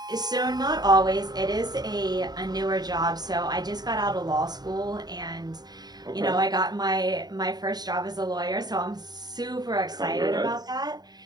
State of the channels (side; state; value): left; late; 0.20 ms